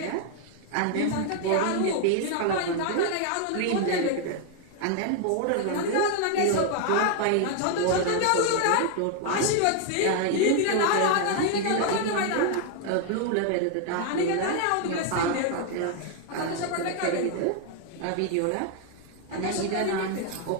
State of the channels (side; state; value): both; different; correlation 0.00